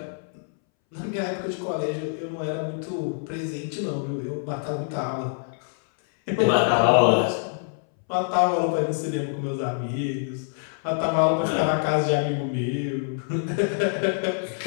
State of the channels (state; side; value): silent; right; 61 dB below the other